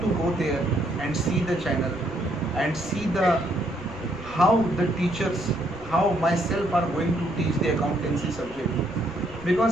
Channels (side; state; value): right; noise; rumble, 18 dB below the sound